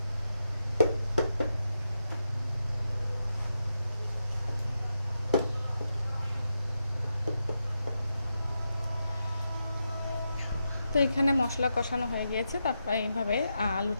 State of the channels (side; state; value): both; inverted; correlation -0.86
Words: তো এখানে মশলা কষানো হয়ে গিয়েছে। তারপরে এইভাবে